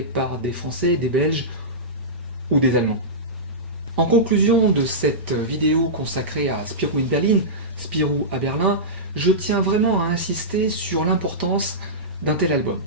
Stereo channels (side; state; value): both; normal; correlation -0.16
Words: par des Français, des Belges ou des Allemands. En conclusion de cette vidéo consacrée à Spirou in Berlin, Spirou à Berlin, je tiens vraiment à insister sur l'importance d'un tel album.